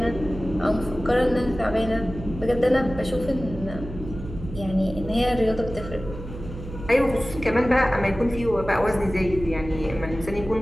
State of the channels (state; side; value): noise; right; hum, 11 dB below the sound